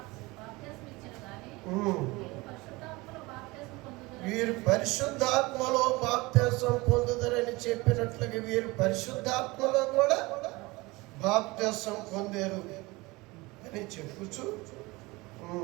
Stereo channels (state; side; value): quieter; left; 22.8 dB